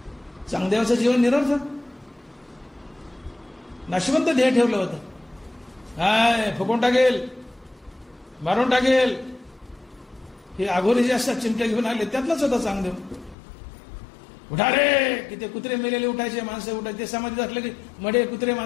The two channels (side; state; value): right; drops out; at 13.4 s